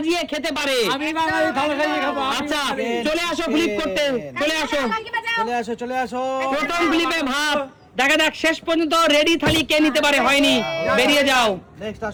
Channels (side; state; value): both; identical; correlation 1.00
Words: খেতে পারে। আমি বাঙালি থালি সাজিয়ে খাবো। আচ্ছা চলে আসো ফ্লিপ করতে, চলে আসো। প্রথম ফ্লিপে ভাত। দেখা যাক শেষ পর্যন্ত রেডি থালি কে নিতে পারে। হয়নি, বেরিয়ে যাও।